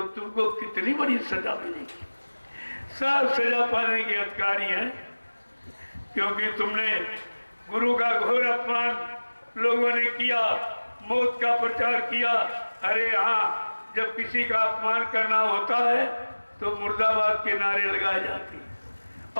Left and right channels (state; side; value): inverted; both; correlation -1.00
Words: तुमको कितनी बड़ी सजा मिलेगी। सब सजा पाने के अधिकारी हैं, क्योंकि तुमने गुरु का घोर अपमान लोगों ने किया, मौत का प्रचार किया। अरे हाँ, जब किसी का अपमान करना होता है तो मुर्दाबाद के नारे लगाए जाते हैं,